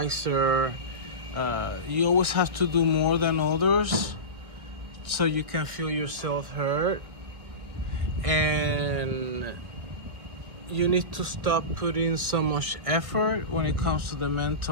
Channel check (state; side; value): late; left; 1.6 ms